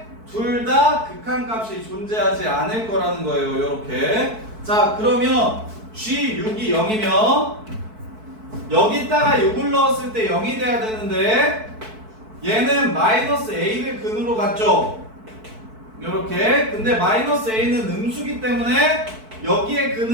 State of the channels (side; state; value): left; late; 4.6 ms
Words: 둘 다 극한값이 존재하지 않을 거라는 거예요. 이렇게. 자 그러면 G6이 0이면 여기다가 6을 넣었을 때 0이 돼야 되는데 얘는 마이너스 A를 근으로 갔죠. 이렇게. 근데 마이너스 A는 음수기 때문에 여기에